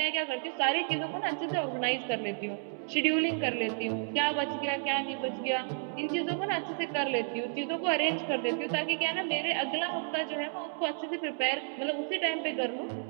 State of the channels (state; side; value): silent; left; 55 dB below the other